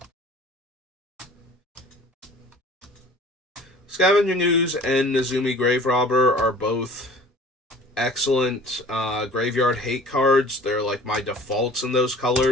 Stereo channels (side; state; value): both; normal; correlation 0.47